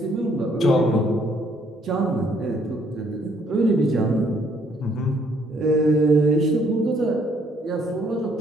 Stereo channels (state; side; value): normal; both; correlation 0.66